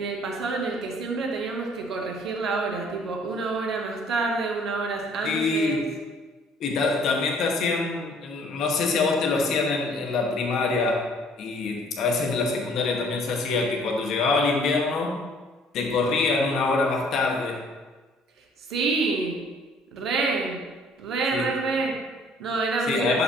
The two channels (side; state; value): both; normal; correlation 0.58